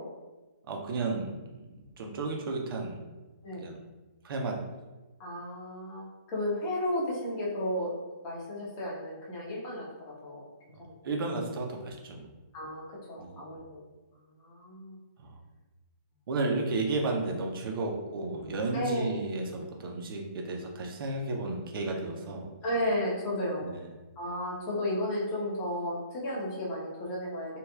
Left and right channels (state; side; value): inverted; both; correlation -0.51